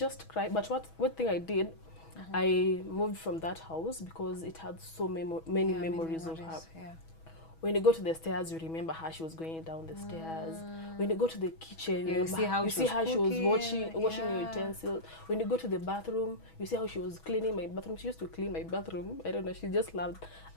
cry. But what thing I did, I moved from that house because it had so many memories of her. When you go to the stairs, you remember how she was going down the stairs. When you go to the kitchen, you see how she was washing your utensils. When you go to the bathroom, you see how she was cleaning my bathroom. She used to clean my bathroom. I don't know, she just loved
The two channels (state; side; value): late; right; 6.2 ms